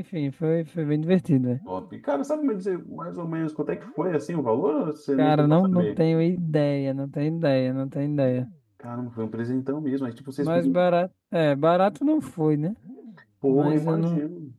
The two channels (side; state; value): both; identical; correlation 1.00